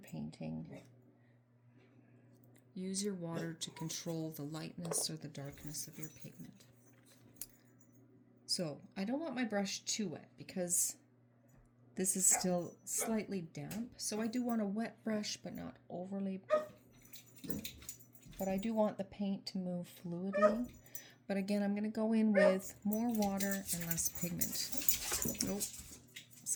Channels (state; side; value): identical; both; correlation 1.00